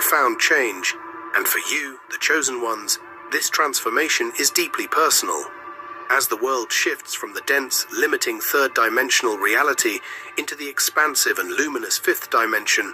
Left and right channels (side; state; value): both; identical; correlation 1.00